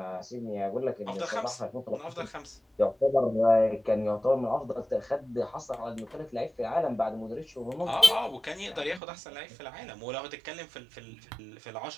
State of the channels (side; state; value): left; drops out; at 9.0 s